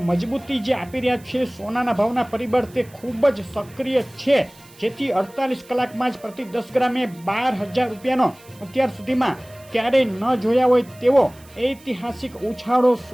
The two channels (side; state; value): right; noise; hiss, 25 dB below the sound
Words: મજબૂતી જે આપી રહ્યા છે સોનાના ભાવના પરિબળ તે ખૂબ જ સક્રિય છે. જેથી 48 કલાકમાં જ પ્રતિ 10 ગ્રામે ₹12,000નો અત્યાર સુધીમાં ક્યારેય ન જોયા હોય તેવો ઐતિહાસિક ઉછાળો